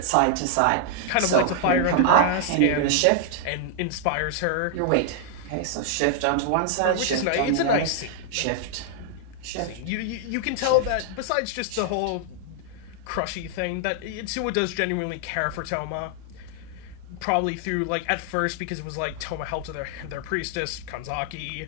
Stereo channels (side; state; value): both; different; correlation 0.00